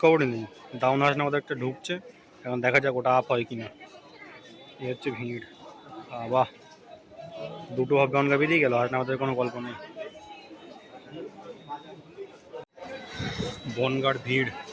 নেই। ডাউন হাসনাবাদ একটা ঢুকছে, এখন দেখা যাক ওটা আপ হয় কি না। এই হচ্ছে ভিড়। বাহ, 2টো ভাব গঙ্গা বেরিয়ে গেল, হাসনাবাদের কোনো গল্প নেই। বনগার ভিড়,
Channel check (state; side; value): identical; both; correlation 1.00